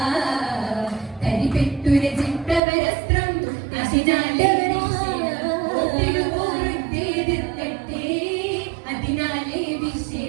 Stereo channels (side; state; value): left; drops out; at 2.6 s